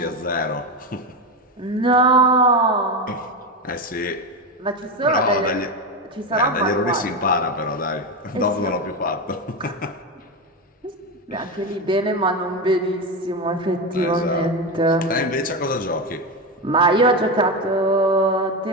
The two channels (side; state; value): both; normal; correlation 0.15